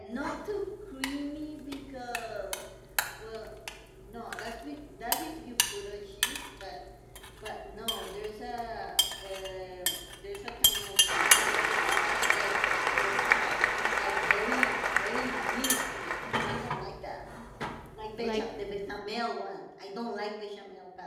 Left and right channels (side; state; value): both; identical; correlation 1.00